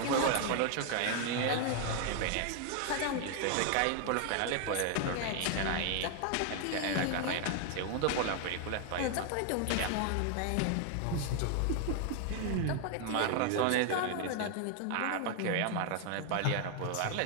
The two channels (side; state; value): both; different; correlation 0.00